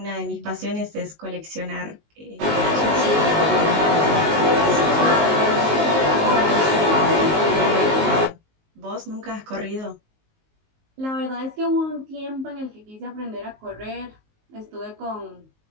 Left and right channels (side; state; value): left; late; 19 ms